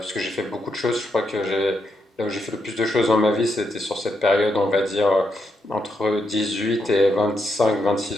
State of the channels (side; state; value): both; normal; correlation 0.81